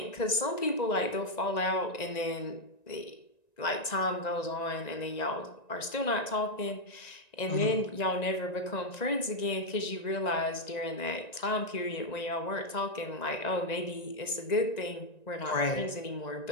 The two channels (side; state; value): right; late; 1.9 ms